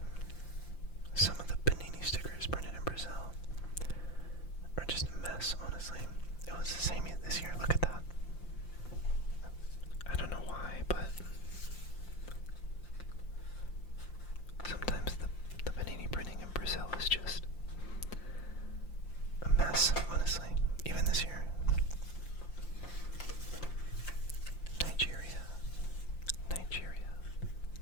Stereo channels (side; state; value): right; late; 5.8 ms